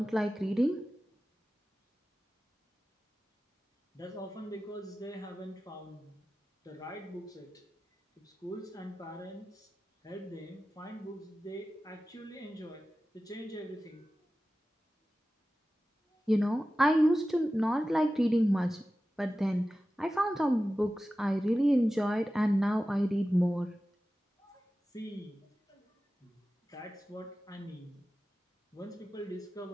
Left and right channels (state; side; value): normal; both; correlation 0.95